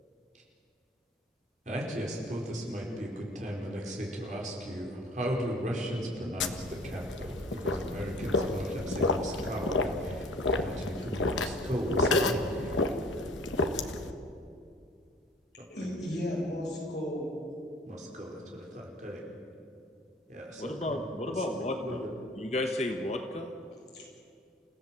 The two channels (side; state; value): both; normal; correlation 0.50